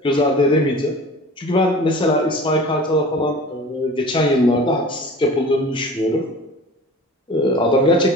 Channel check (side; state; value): both; normal; correlation 0.40